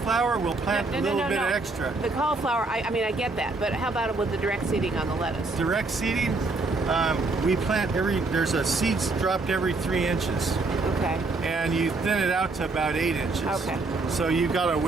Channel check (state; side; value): quieter; left; 3.4 dB